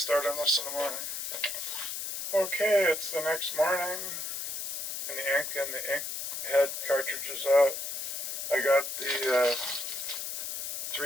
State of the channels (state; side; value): noise; left; hiss, 4 dB below the sound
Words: start on this in the morning. Okay, it's the next morning, and the ink head cartridge is out. I got the